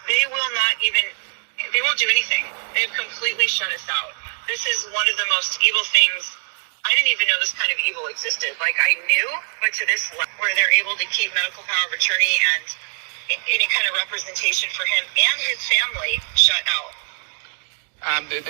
They won't do anything. They've completely shut us out. This is one of the most evil things. I didn't even know this kind of evil existed. Like, I knew, but to this level, where they're able to keep medical power of attorney and any kind of representation for him and his family shut out.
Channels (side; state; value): left; silent; digital silence